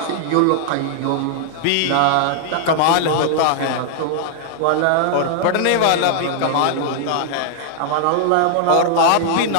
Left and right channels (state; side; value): different; both; correlation -0.01